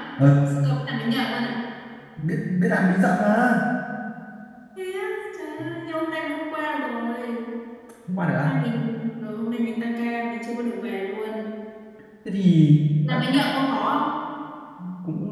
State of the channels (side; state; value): both; identical; correlation 1.00